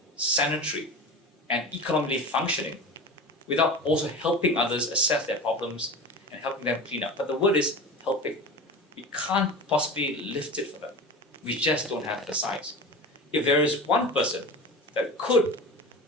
sanitary and economically functioning without also helping others assess their problems and helping them clean up. But the word is helping. We can't possibly lift it for them. We just don't have the size. If there is one person that could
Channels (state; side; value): normal; both; correlation 0.31